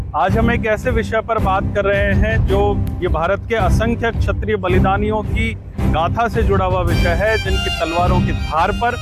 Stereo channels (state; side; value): identical; both; correlation 1.00